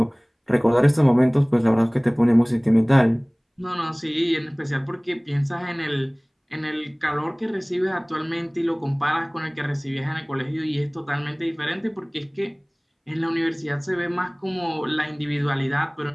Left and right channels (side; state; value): both; identical; correlation 1.00